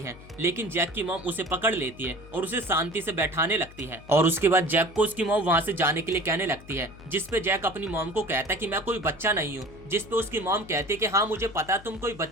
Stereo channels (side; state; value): left; noise; hum, 20 dB below the sound